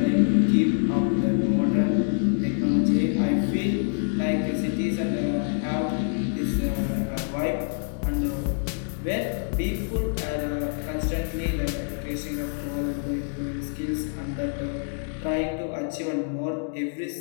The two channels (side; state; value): right; silent; digital silence